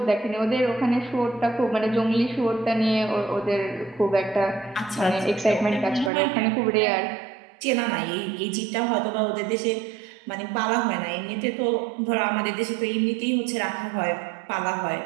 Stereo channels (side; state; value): left; drops out; at 6.1 s